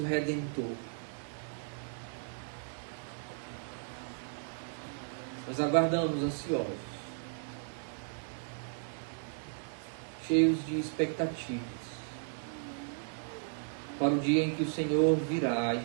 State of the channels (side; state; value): left; silent; digital silence